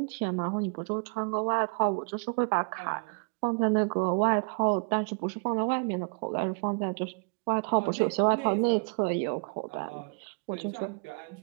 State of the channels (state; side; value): quieter; left; 38.6 dB